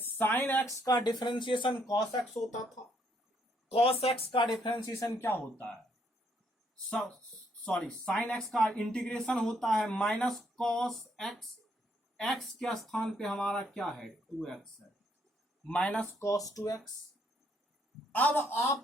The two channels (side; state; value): both; normal; correlation 0.71